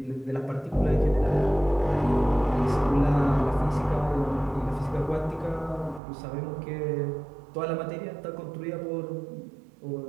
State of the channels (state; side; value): drops out; left; at 6.0 s